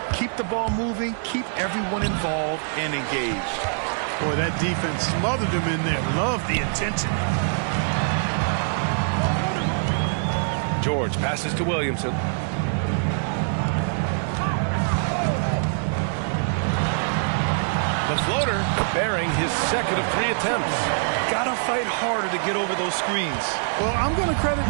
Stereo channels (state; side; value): silent; left; digital silence